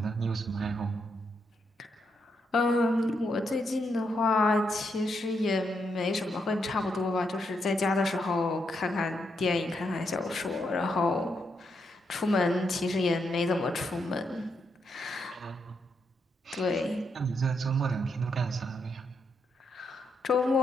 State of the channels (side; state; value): both; normal; correlation 0.80